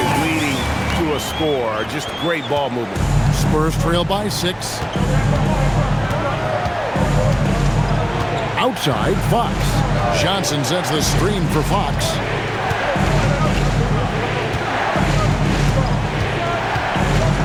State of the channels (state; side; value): identical; both; correlation 1.00